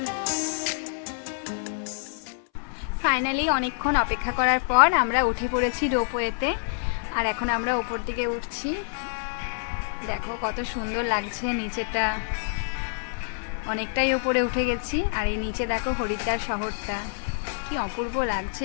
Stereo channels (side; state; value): right; silent; 60 dB below the other